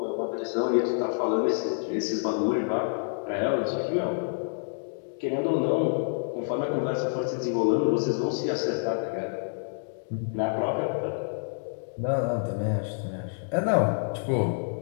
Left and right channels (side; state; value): right; silent; digital silence